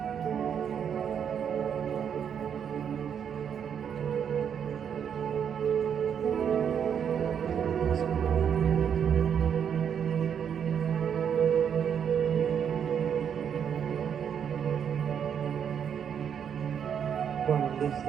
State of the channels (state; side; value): quieter; left; 8.0 dB